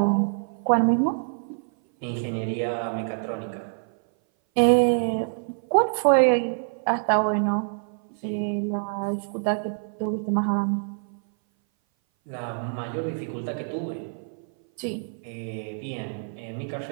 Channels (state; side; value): silent; left; 58 dB below the other